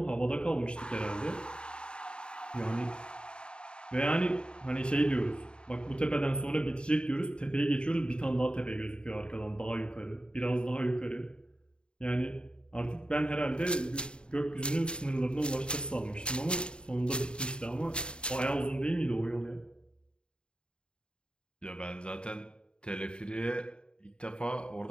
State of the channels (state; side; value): late; right; 0.052 ms